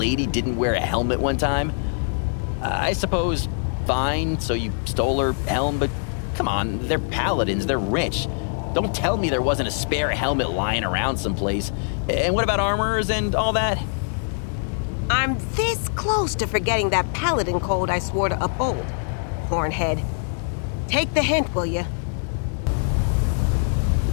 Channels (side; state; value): right; silent; 63 dB below the other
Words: didn't wear a helmet one time? I suppose, fine, so you stole her helm, but come on, they're paladins, they're rich. Don't tell me there wasn't a spare helmet lying around someplace. And what about armors and all that? I'm this close to forgetting that paladin code I swore to uphold. Hornhead. Take the hint, will you?